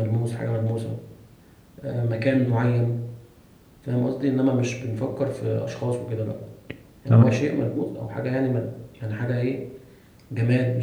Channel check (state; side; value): identical; both; correlation 1.00